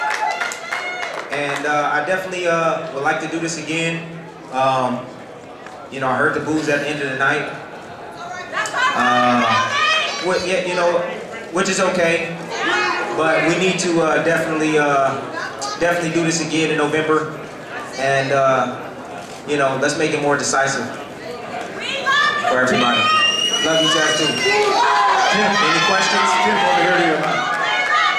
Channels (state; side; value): identical; both; correlation 1.00